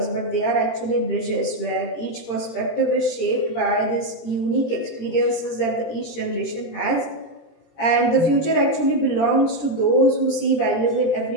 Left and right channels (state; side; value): late; right; 17 ms